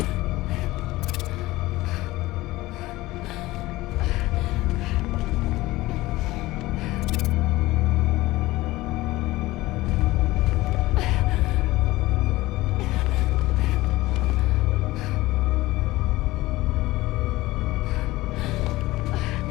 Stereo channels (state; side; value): quieter; right; 18.6 dB